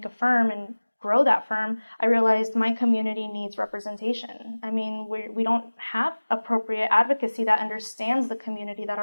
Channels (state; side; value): inverted; both; correlation -1.00